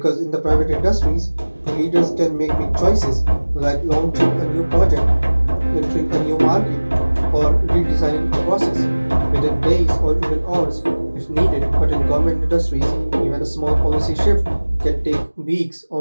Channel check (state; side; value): inverted; both; correlation -1.00